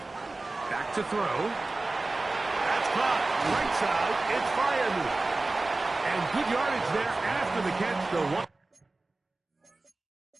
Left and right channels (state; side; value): quieter; left; 3.2 dB